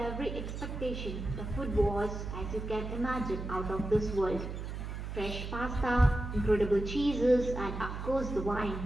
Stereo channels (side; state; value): right; noise; hum, 6 dB below the sound